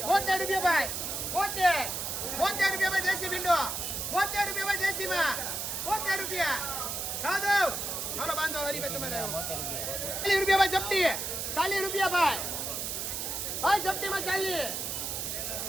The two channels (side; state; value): right; noise; hiss, 3 dB below the sound